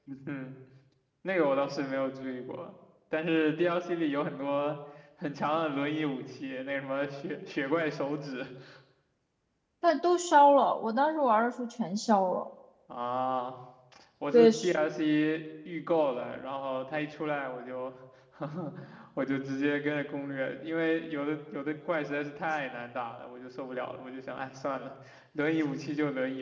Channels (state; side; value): identical; both; correlation 1.00